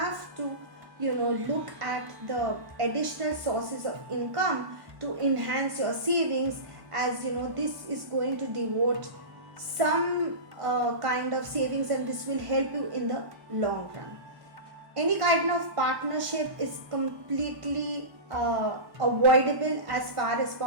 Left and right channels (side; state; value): left; late; 1.1 ms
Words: to look at the additional sources of income to enhance your savings, as this is going to devote some kind of savings, and this will help you in the long run. Any kind of partnership is completely avoidable as far as